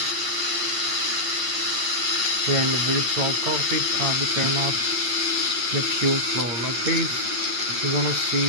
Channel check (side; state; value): left; late; 9.0 ms